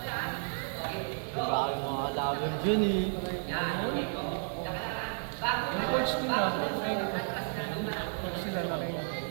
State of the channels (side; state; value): left; silent; digital silence